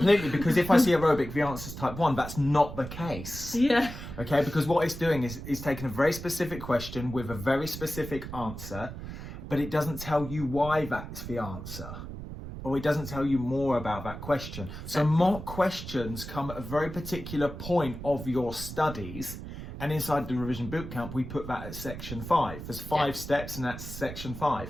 Because if I see aerobic, the answer's type 1. That's not the case. Yeah. Okay, because what it's doing is taking a very specific question with a very specific answer, but it doesn't tell you why that's the answer. Or it doesn't tell you more about that question. So mock questions come at a very particular point of your studies. And inside the revision bootcamp, we put that at section 5. There's 5 steps, and that's section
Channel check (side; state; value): right; noise; rumble, 10 dB below the sound